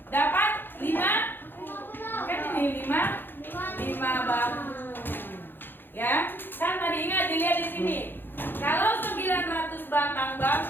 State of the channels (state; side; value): late; right; 0.098 ms